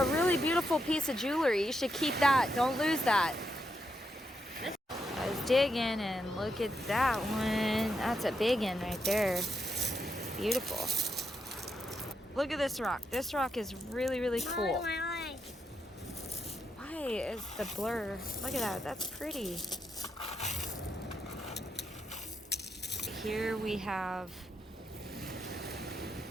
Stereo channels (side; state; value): both; normal; correlation 0.82